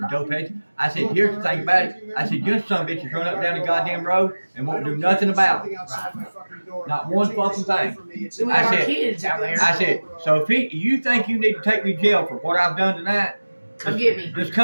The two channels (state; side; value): inverted; both; correlation -1.00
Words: dope head. I said, here's the thing about it. I said, you son of a bitch is running up down the goddamn road and won't do nothing about it. Not one fucking thing. I said, kids out there. I said, so if you think you need to take me to jail for what I've done tonight, Come get me. just